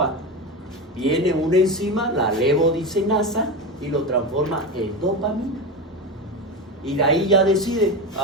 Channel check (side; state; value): both; normal; correlation 0.20